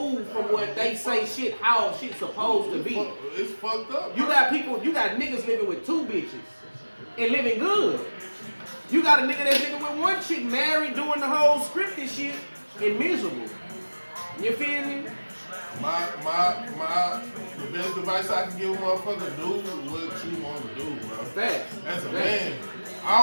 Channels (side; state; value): both; inverted; correlation -1.00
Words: from what they say shit, how shit's supposed to be. It's fucked up. You got niggas living with 2 bitches and living good. You got a nigga that's living with 1 chick married doing the whole scripted shit and miserable. You feel me? The best advice I can give a motherfucker, do what you want to do, bro. Facts. As a man, I